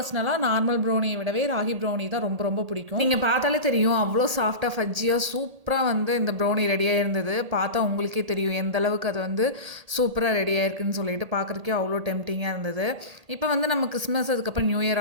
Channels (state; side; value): late; left; 1.8 ms